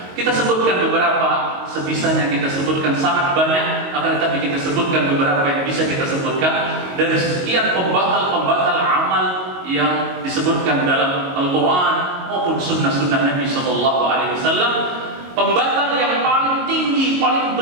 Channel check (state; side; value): late; left; 22 ms